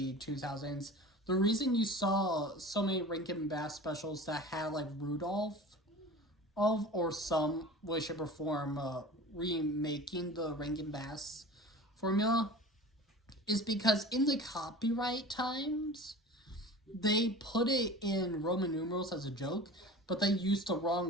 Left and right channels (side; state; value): both; normal; correlation 0.37